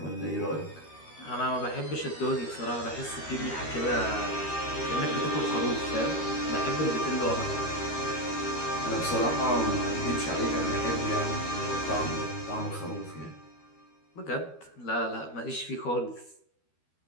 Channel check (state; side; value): late; right; 13 ms